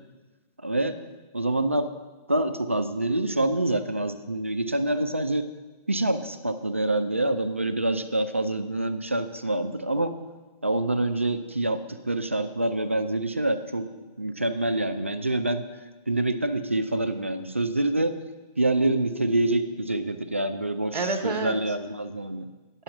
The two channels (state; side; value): inverted; both; correlation -0.78